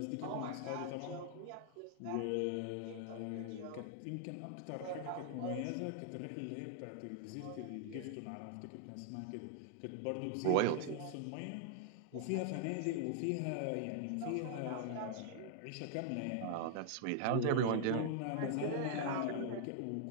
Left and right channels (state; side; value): different; both; correlation -0.01